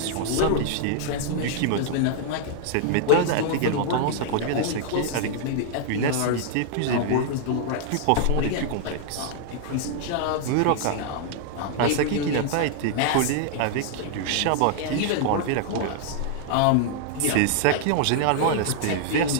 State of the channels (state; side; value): different; both; correlation -0.01